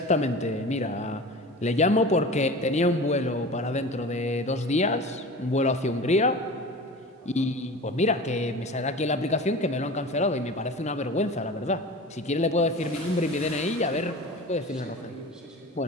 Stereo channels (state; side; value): normal; both; correlation 0.35